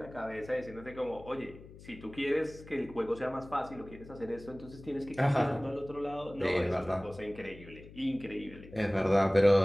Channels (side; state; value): left; noise; hum, 18 dB below the sound